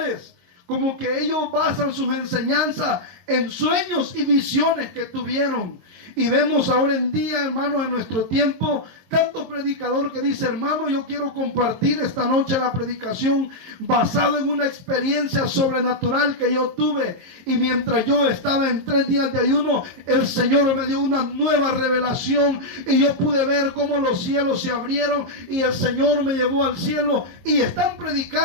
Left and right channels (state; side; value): late; left; 22 ms